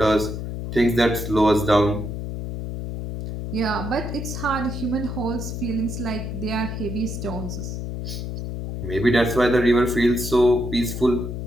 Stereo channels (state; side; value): noise; left; hum, 6 dB below the sound